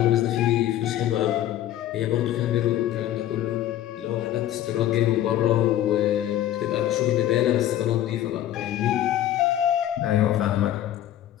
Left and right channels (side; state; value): right; quieter; 12.4 dB